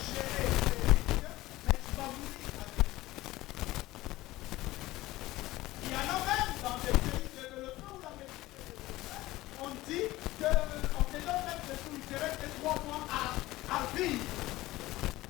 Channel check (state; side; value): quieter; right; 17.8 dB